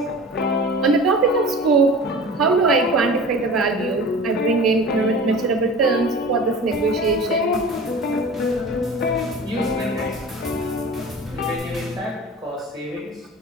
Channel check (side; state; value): both; normal; correlation 0.38